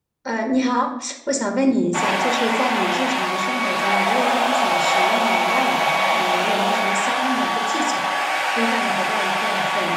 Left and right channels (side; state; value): both; identical; correlation 1.00